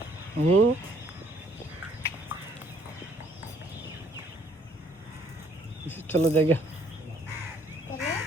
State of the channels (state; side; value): normal; both; correlation 0.64